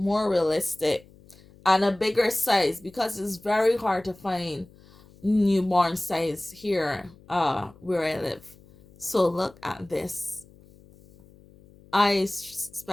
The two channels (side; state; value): left; noise; hum, 25 dB below the sound